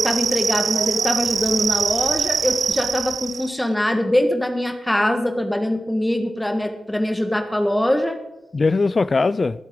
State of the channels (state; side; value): normal; both; correlation 0.93